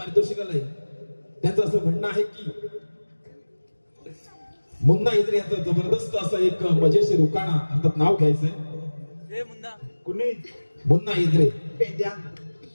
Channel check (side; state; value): both; inverted; correlation -1.00